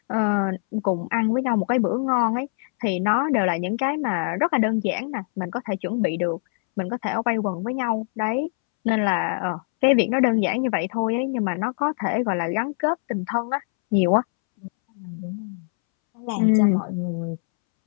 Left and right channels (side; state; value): right; silent; 63 dB below the other